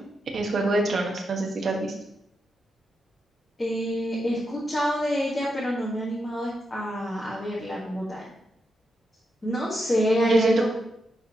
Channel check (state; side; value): normal; both; correlation 0.84